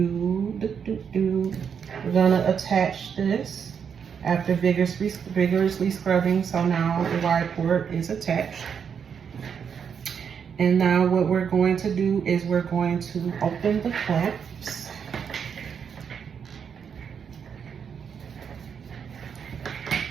we're going to attach this after vigorously scrubbing. So now the wide port is attached. And now what we're going to do is we're going to open the clamps.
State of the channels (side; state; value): left; quieter; 7.1 dB